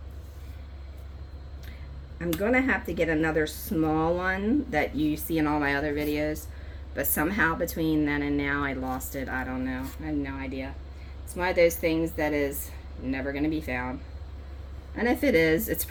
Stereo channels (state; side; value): identical; both; correlation 1.00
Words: I'm going to have to get another small one that you see in all my other videos, but somehow between then and now I lost it. I don't know. I have no idea. It's one of those things that is never going to be found. And if it is, it's